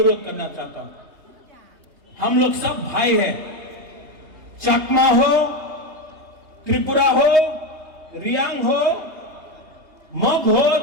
करना चाहता हूं। हम लोग सब भाई हैं, चकमा हो, त्रिपुरा हो, रियांग हो, मग हो,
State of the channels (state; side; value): late; left; 3.2 ms